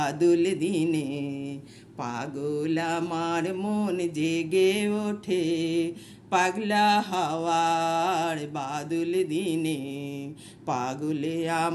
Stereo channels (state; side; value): identical; both; correlation 1.00